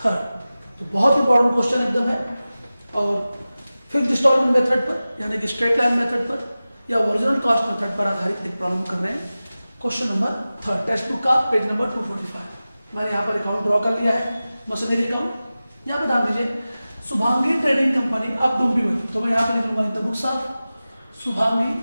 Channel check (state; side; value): inverted; both; correlation -0.96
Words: 3rd। तो बहुत इंपॉर्टेंट क्वेश्चन एकदम है और फिक्स्ड इंस्टॉलमेंट मेथड पर यानी कि स्ट्रेट लाइन मेथड पर या ओरिजिनल कॉस्ट मेथड पर आधारित एक प्रॉब्लम कर रहे हैं। Question number 3rd text book का पेज नंबर 245। मैंने यहाँ पर अकाउंट ड्रॉ कर लिया है, मशीनरी अकाउंट। यहाँ पे ध्यान दीजिए, शुभांगी ट्रेडिंग कंपनी अब डोंबिवली, तो मैं यहाँ पर लिखूंगा in the books of Shubhangi